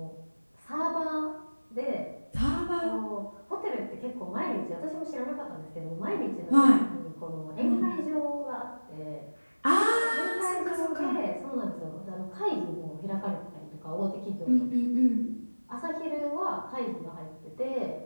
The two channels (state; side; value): inverted; both; correlation -1.00